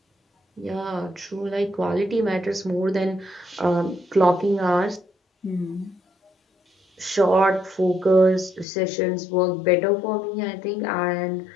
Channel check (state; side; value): drops out; right; at 8.7 s